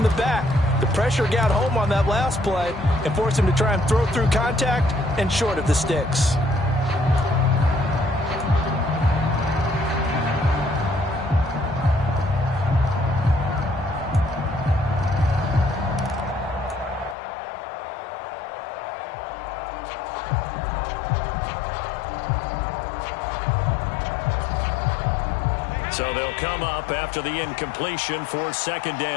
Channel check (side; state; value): right; drops out; at 17.2 s